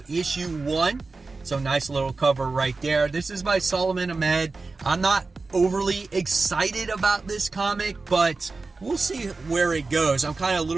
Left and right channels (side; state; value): left; quieter; 3.9 dB